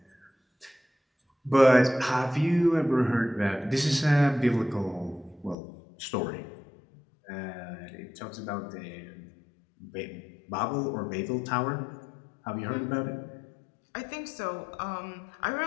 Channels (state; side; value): drops out; right; at 5.6 s